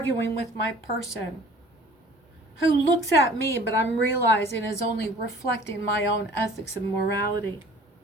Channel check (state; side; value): normal; both; correlation 0.50